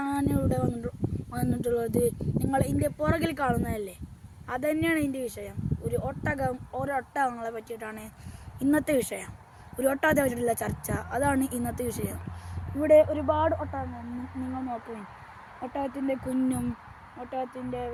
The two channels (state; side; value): identical; both; correlation 1.00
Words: വന്നിട്ടുള്ളത് നിങ്ങൾ ഇതിൻ്റെ പുറകിൽ കാണുന്നതല്ലേ, അതുതന്നെയാണ് ഇതിൻ്റെ വിഷയം. ഒട്ടകങ്ങളെ പറ്റിയിട്ടാണ് ഇന്നത്തെ വിഷയം. ഒരു ഒട്ടകത്തെ പറ്റിയിട്ടുള്ള ചർച്ച, അതാണ് ഇന്നത്തെ വിഷയം. ഇവിടെ ഒരുപാട് ഒട്ടകങ്ങൾ നിങ്ങൾ നോക്കുകയും, ഒട്ടകത്തിൻ്റെ കുഞ്ഞും ഒട്ടകത്തിൻ്റെ